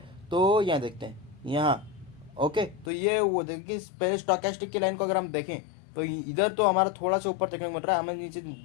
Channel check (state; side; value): drops out; right; at 2.9 s